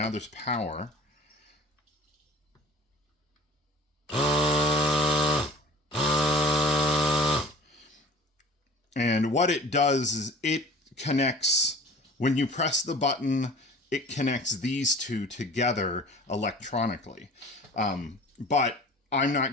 there's power. And what it does is it connects, when you press the button, it connects these two together electronically. But I'm not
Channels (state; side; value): normal; both; correlation 0.44